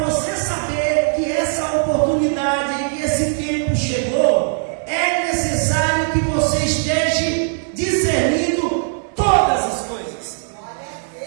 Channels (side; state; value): left; silent; digital silence